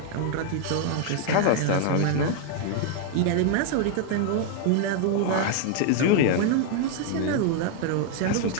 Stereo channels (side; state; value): both; different; correlation 0.00